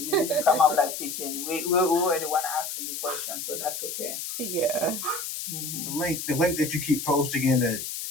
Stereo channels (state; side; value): noise; left; hiss, 6 dB below the sound